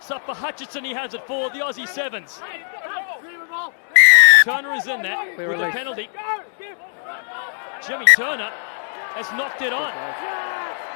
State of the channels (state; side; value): silent; right; 65 dB below the other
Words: up for Hutchinson. He has it for the Aussie Sevens. Turner is in there with a penalty. Jimmy Turner has knocked it on.